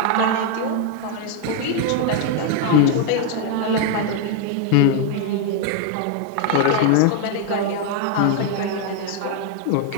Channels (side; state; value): both; different; correlation 0.00